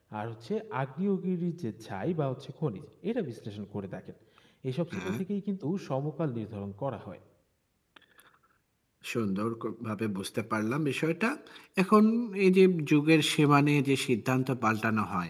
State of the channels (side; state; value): both; identical; correlation 1.00